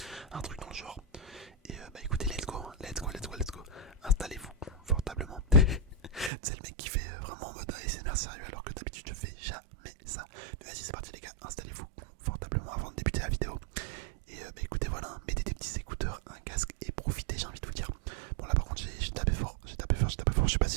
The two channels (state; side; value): drops out; left; at 6.3 s